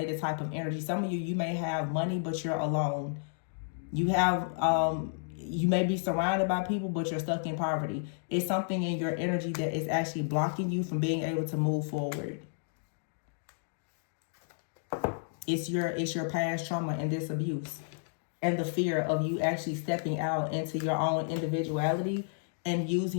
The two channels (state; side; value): silent; right; digital silence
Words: type of energy. Some of you may have money, but you're alone. You have you may be surrounded by people, but you're stuck in poverty. It's something in your energy that is actually blocking you from being able to move forward. It's your past trauma and this abuse, and the fear of you actually stepping out into your own individuality and